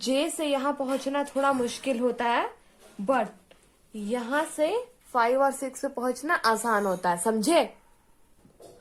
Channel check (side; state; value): both; identical; correlation 1.00